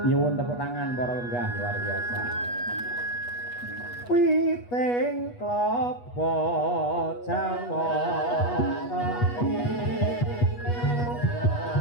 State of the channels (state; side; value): late; right; 8.3 ms